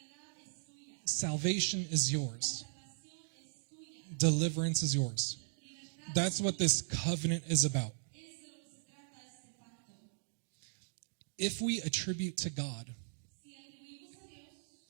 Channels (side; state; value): left; silent; digital silence